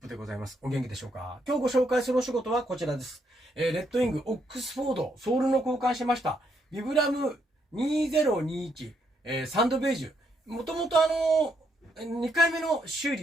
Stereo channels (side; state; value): both; normal; correlation 0.75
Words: でございます。お元気でしょうか？今日ご紹介するお仕事はこちらです。レッドウィング、オックスフォード、ソールの交換しました。ビブラム2021、サンドベージュ。もともと2回目の修